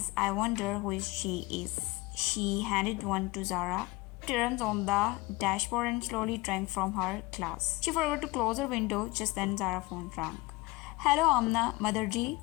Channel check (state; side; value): quieter; right; 22.2 dB